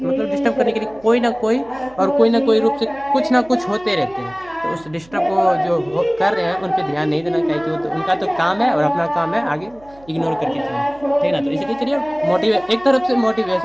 करने के लिए कोई ना कोई रूप से कुछ ना कुछ होते रहते हैं। तो उस डिस्टर्ब को जो कर रहे हैं उन पर ध्यान नहीं देना चाहिए, कि वो तो उनका तो काम है और अपना काम है आगे इग्नोर करके चलें, ठीक ना। तो इसलिए चलिए एक तरफ से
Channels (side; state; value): right; noise; hum, 26 dB below the sound